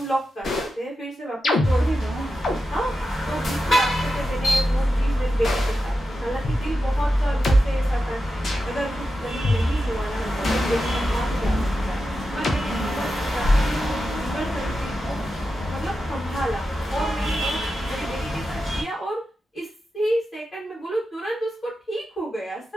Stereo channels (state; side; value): normal; both; correlation 0.90